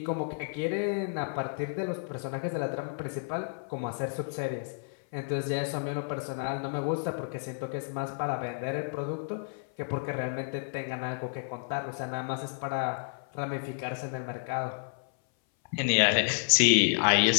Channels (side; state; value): right; silent; 57 dB below the other